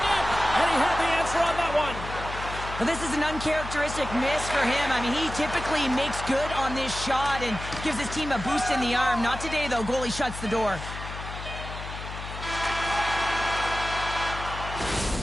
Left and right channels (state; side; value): noise; left; hum, 9 dB below the sound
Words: net. And he had the answer on that one. Well, this is an uncharacteristic miss for him. I mean, he typically makes good on this shot and gives his team a boost in the arm. Not today, though. Goalie shuts the door.